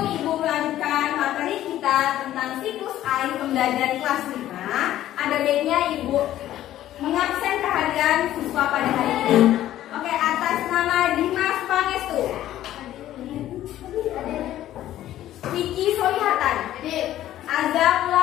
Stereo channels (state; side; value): quieter; right; 13.1 dB